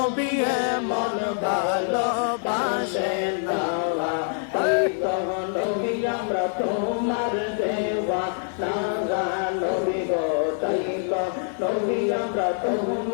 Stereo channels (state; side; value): silent; right; 58 dB below the other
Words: মন ভালোবাসে নাওয়া তাই তো নবী আমরা তোমার দেওয়া নাওয়া নবী গো তাই তো নবী আমরা